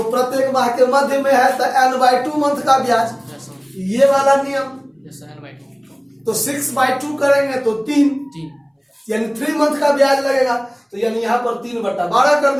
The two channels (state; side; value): identical; both; correlation 1.00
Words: प्रत्येक माह के मध्य में है तो n/2 मंथ का ब्याज, ये वाला नियम। तो 6/2 करेंगे तो 3 यानी 3 मंथ का ब्याज लगेगा, तो यानी यहाँ पर 3/12 कर